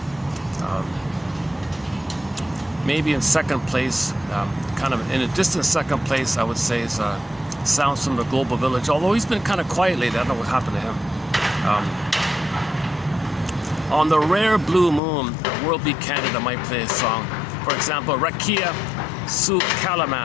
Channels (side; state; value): right; drops out; at 15.0 s